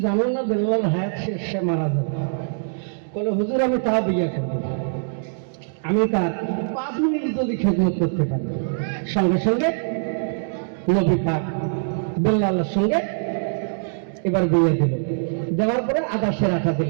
জানো না বেল্লাল হায়াত শেষ, সে মারা যাবে। বলে হুজুর আমি তা বিয়ে করবো, আমি তার 5 মিনিট যদি খেদমত করতে পারি। সঙ্গে সঙ্গে নবী পাক বেল্লালের সঙ্গে এবার বিয়ে দিল। দেওয়ার পরে আদাসের আঠা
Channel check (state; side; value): silent; left; digital silence